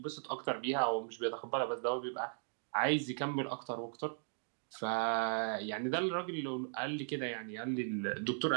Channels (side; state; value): left; silent; digital silence